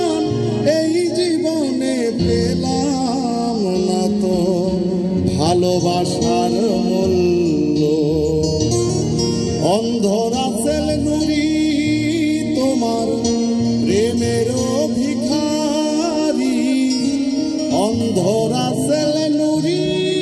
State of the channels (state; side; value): identical; both; correlation 1.00